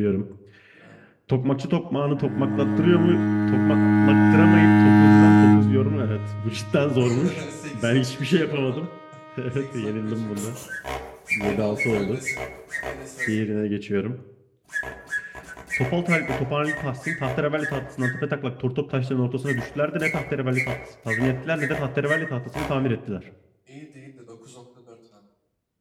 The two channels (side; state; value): both; identical; correlation 1.00